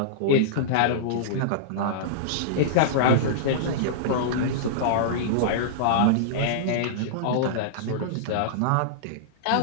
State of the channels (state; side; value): different; both; correlation -0.03